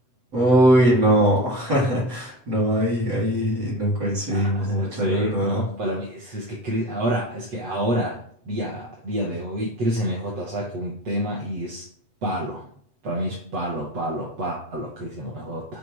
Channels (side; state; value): left; late; 8.0 ms